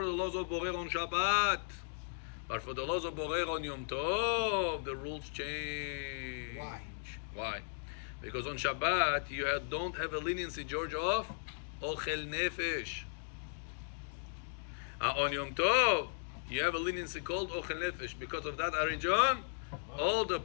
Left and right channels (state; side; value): silent; right; digital silence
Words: the laws of borer on Shabbat. But for the laws of borer on Yom Tov, the rules change. Why? Because on Shabbat you don't have a leniency, George, of ochel nefesh. On Yom Tov you have a leniency called ochel nefesh. Because of that, Arijon, all the